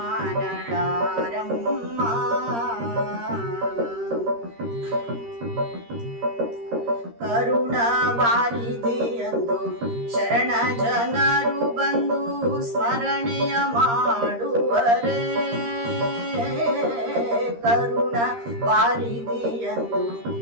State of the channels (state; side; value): late; left; 13 ms